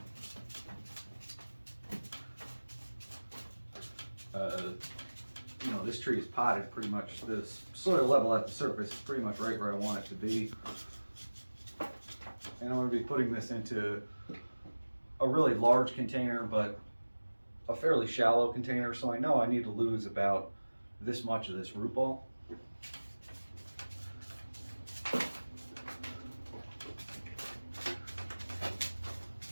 You know, this tree is potted pretty much. This soil level at the surface is pretty much right where I want it to be. And I'm going to be putting this into a really large container, but a fairly shallow container, so I know I need to lose about this much of this root ball.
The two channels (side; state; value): both; inverted; correlation -1.00